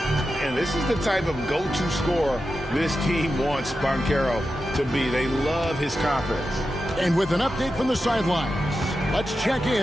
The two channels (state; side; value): normal; both; correlation 0.90